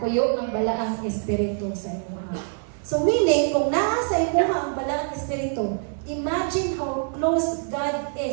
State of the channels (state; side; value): silent; left; 59 dB below the other